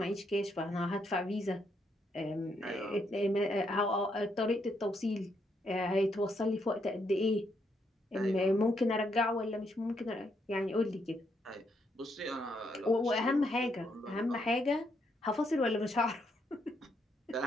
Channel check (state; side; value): normal; both; correlation 0.76